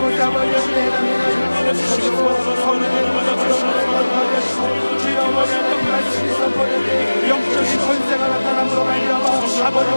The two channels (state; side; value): inverted; both; correlation -1.00